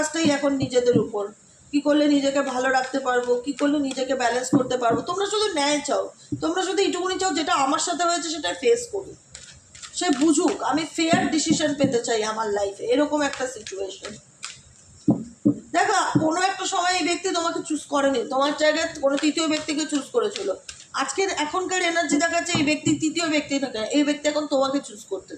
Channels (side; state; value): both; identical; correlation 1.00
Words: এখন নিজেদের উপর, কি করলে নিজেকে ভালো রাখতে পারবো, কি করলে নিজেকে ব্যালেন্স করতে পারবো। তোমরা শুধু ন্যায় চাও, তোমরা শুধু এইটুকুনি চাও যেটা আমার সাথে হয়েছে সেটা ফেস করুক, সে বুঝুক, আমি ফেয়ার ডিসিশন পেতে চাই আমার লাইফে, এরকম একটা সিচুয়েশন। দেখো কোনো একটা সময় এই ব্যক্তি তোমাকে চুজ করেনি, তোমার জায়গায় কোনো তৃতীয় ব্যক্তিকে চুজ করেছিল। আজকের এখনকার এনার্জি দেখাচ্ছে এই ব্যক্তি তৃতীয় ব্যক্তি থাকে, এই ব্যক্তি এখন তোমাকে চুজ করতে